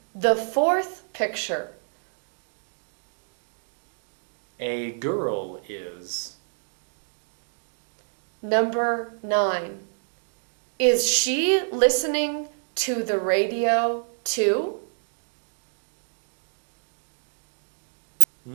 the fourth picture? A girl is. Number 9. Is she listening to the radio too?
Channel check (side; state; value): left; silent; digital silence